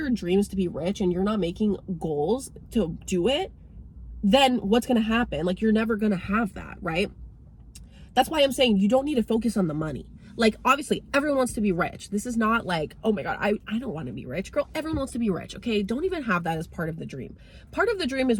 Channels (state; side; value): identical; both; correlation 1.00